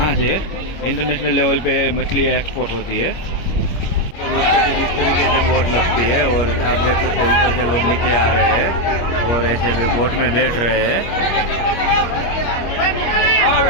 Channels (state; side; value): late; right; 25 ms